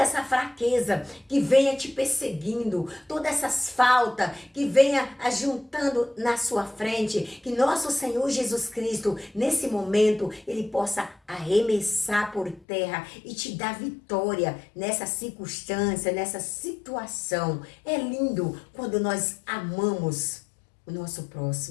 fraqueza que venha te perseguindo, todas essas faltas que venha ajuntando na sua frente, que nosso Senhor Jesus Cristo, nesse momento, Ele possa arremessar por terra e te dar vitória nessa circunstância, nessa situação. É lindo quando nós amamos o nosso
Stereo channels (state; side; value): drops out; right; at 12.7 s